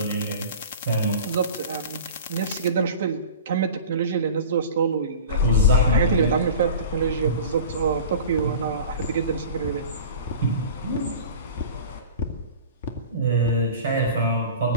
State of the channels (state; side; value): inverted; both; correlation -0.37